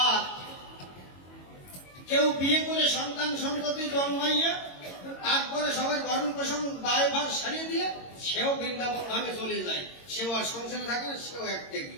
আর কেউ বিয়ে করে সন্তান সন্ততি জন্মাইয়া তারপরে সবার ভরণ পোষণ দায়ভার সারিয়ে দিয়ে সেও বৃন্দাবন ধামে চলে যায়, সেও আর সংসারে থাকে না, সেও এক ত্যাগী।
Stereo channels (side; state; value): right; late; 22 ms